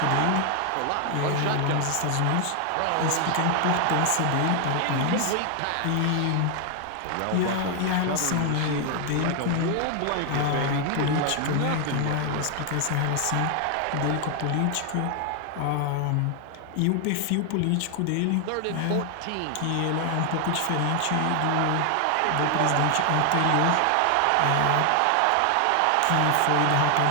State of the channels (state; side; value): different; both; correlation 0.00